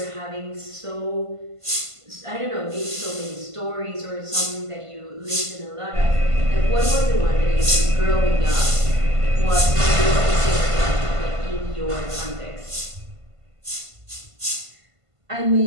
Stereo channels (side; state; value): left; late; 1.5 ms